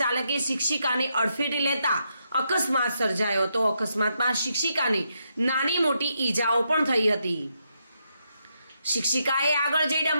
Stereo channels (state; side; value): inverted; both; correlation -0.81